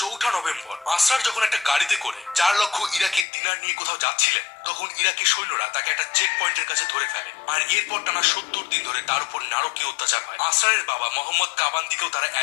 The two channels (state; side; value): drops out; right; at 3.2 s